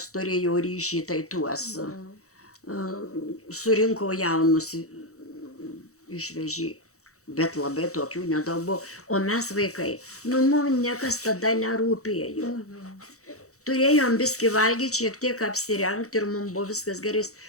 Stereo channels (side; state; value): right; late; 0.65 ms